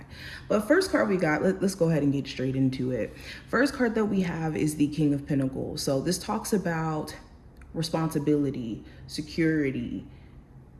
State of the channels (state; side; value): identical; both; correlation 1.00